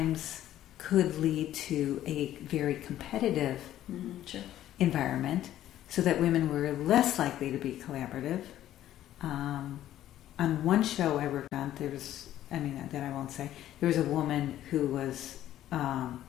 could lead to a very competitive environment, so that women were less likely to be collaborative. On one show I worked on, that I won't say, there was a woman who was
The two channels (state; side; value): quieter; right; 12.6 dB